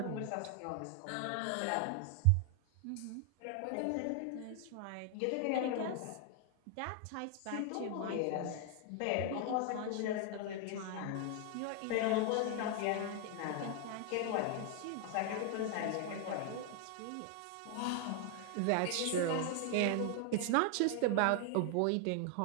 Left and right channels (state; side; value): different; both; correlation 0.00